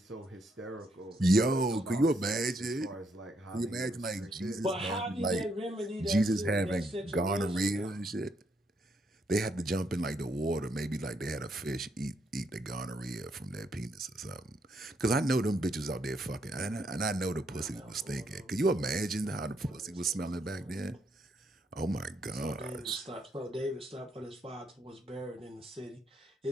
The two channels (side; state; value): both; normal; correlation 0.75